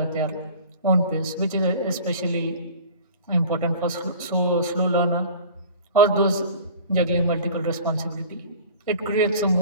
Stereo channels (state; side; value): inverted; both; correlation -0.42